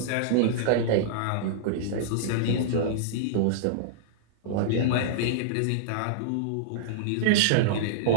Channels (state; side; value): different; both; correlation -0.02